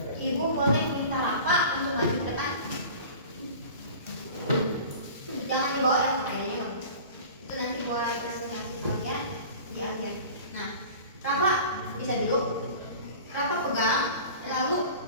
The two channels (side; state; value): both; inverted; correlation -0.40